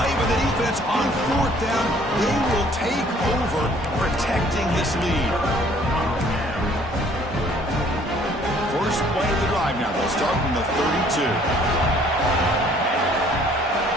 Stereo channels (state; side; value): normal; both; correlation 0.58